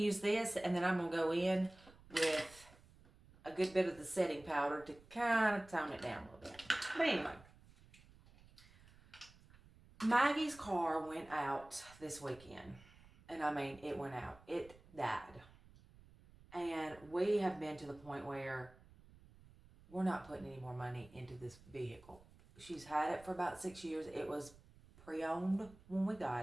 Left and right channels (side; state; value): right; noise; rumble, 24 dB below the sound